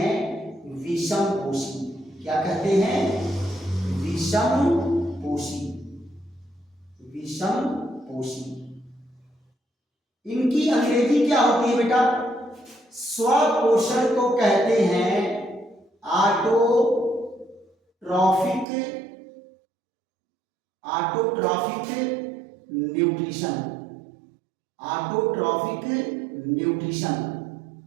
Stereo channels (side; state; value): left; drops out; at 18.7 s